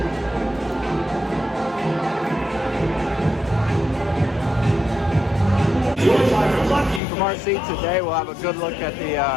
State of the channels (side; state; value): right; drops out; at 7.0 s